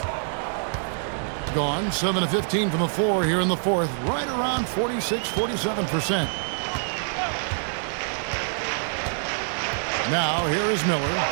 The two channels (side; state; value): left; silent; digital silence